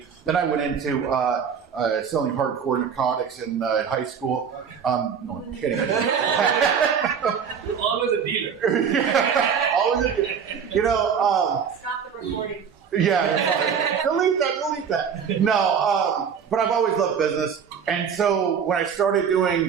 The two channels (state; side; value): quieter; left; 7.1 dB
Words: Then I went into selling hardcore narcotics in high school. No, I'm kidding. Always a dealer. Always a dealer. Stop the recording. Yeah, delete that. No, but I've always loved business. And so when I started